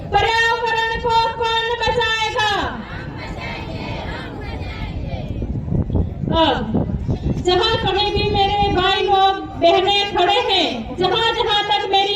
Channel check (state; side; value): identical; both; correlation 1.00